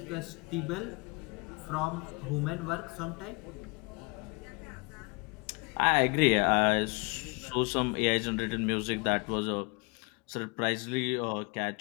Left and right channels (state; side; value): quieter; right; 29.6 dB